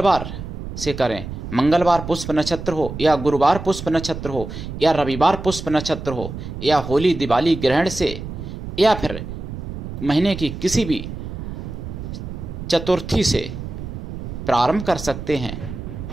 से करें, मंगलवार पुष्प नक्षत्र हो या गुरुवार पुष्प नक्षत्र हो या रविवार पुष्प नक्षत्र हो या होली दिवाली ग्रहण से या फिर महीने की किसी भी चतुर्थी से प्रारंभ कर सकते हैं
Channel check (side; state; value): right; noise; rumble, 8 dB below the sound